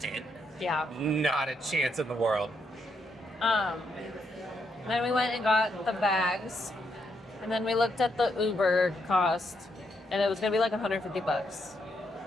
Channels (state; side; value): normal; both; correlation 0.78